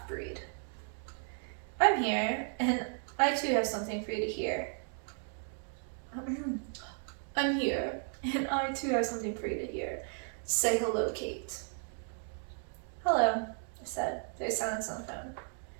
"I'm here, and I too have something for you to hear." "I'm here, and I too have something for you to hear. Say hello, Kate." "Hello," I said. There's silence on the phone.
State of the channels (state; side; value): silent; left; 55 dB below the other